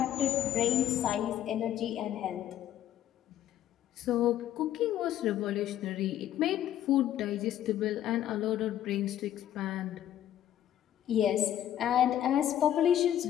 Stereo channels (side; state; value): right; quieter; 11.5 dB